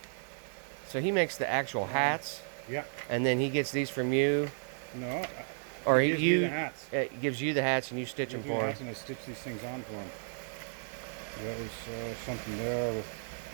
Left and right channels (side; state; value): left; silent; digital silence